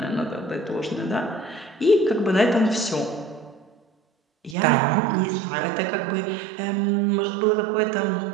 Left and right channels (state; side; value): drops out; left; at 4.5 s